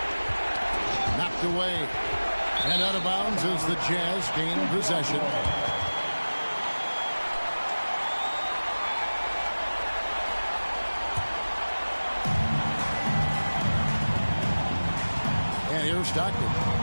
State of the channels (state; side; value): inverted; both; correlation -1.00